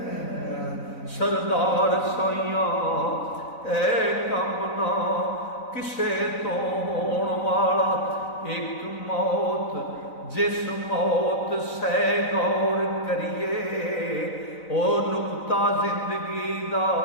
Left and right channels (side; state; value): right; late; 4.0 ms